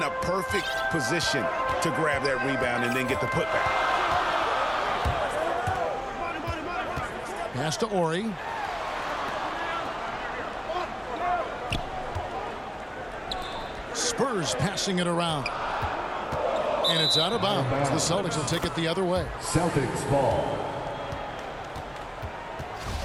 a perfect position to grab that rebound and then get the putback. Pass to Ori. Spurs passing it around. And it's out of bounds. The Celtics will take it the other way. Celtics ball.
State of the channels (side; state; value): both; identical; correlation 1.00